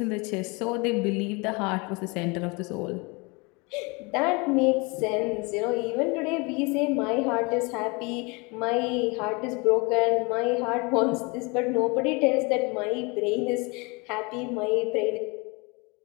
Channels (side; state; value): right; quieter; 28.3 dB